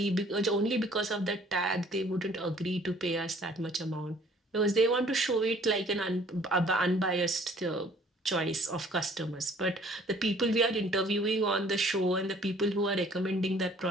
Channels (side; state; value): both; normal; correlation 0.56